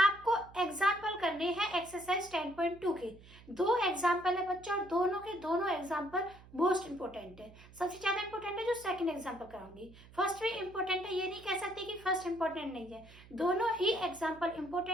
एग्जाम्पल करने हैं एक्सरसाइज 10.2 के। दो एग्जाम्पल है बच्चों, और दोनों के दोनों एग्जाम्पल मोस्ट इंपोर्टेंट है। सबसे ज्यादा इंपोर्टेंट है जो सेकंड एग्जाम्पल कराऊंगी। फर्स्ट भी इंपोर्टेंट है, ये नहीं कह सकते कि फर्स्ट इंपोर्टेंट नहीं है। दोनों ही एग्जाम्पल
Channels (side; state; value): right; noise; hum, 21 dB below the sound